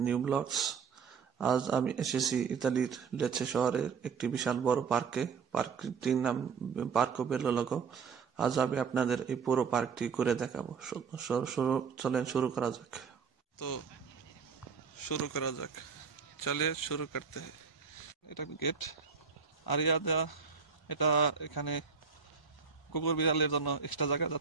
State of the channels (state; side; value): quieter; left; 5.9 dB